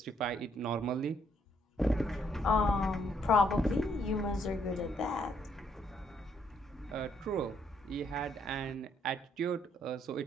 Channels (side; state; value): both; normal; correlation 0.70